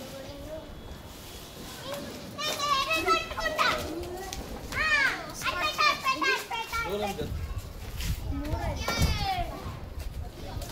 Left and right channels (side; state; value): both; identical; correlation 1.00